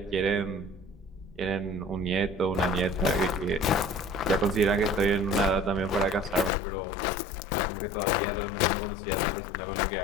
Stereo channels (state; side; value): drops out; right; at 6.5 s